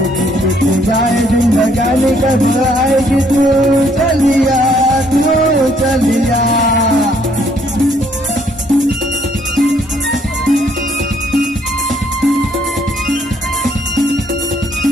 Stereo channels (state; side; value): normal; both; correlation 0.67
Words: जाए जिंदगानी कब आएगी तू, चलिया तू चलिया.